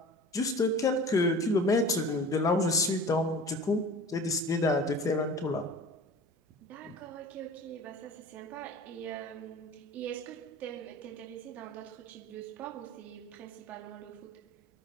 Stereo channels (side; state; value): both; normal; correlation 0.40